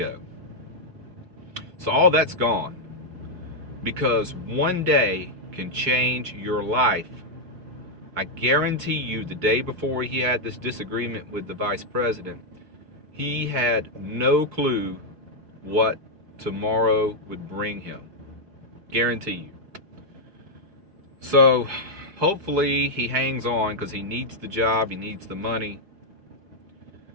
So all that's gone, because one day can change your life. I guarantee you, the day before he had this disagreement with the vice president, he had no clue what tomorrow would bring him. Guarantee you. So hopefully he hangs on, because he needs the job, he needs the money.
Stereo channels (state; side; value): late; left; 5.2 ms